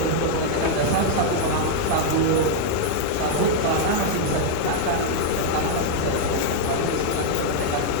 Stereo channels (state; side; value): different; both; correlation 0.00